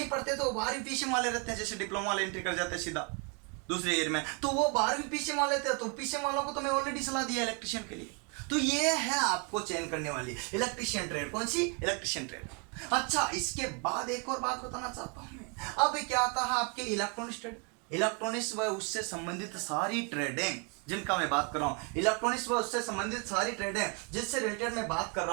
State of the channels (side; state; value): left; quieter; 35.2 dB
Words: पढ़ते तो 12वीं पीसीएम वाले रहते हैं। जैसे डिप्लोमा वाले एंट्री कर जाते हैं सीधा दूसरे ईयर में, तो वो 12वीं पीसीएम वाले थे। तो पीसीएम वालों को तो मैं ऑलरेडी सलाह दिया इलेक्ट्रिशियन के लिए। तो ये है आपको चयन करने वाली इलेक्ट्रिशियन ट्रेड, कौन सी, इलेक्ट्रिशियन ट्रेड। अच्छा, इसके बाद एक और बात बताना चाहता हूं मैं। अब क्या आता है आपके इलेक्ट्रॉनिक्स ट्रेड, इलेक्ट्रॉनिक्स व उससे संबंधित सारी ट्रेडें जिनका मैं बात कर रहा हूं, इलेक्ट्रॉनिक्स व उससे संबंधित सारी ट्रेडें जिससे रिलेटेड मैं बात कर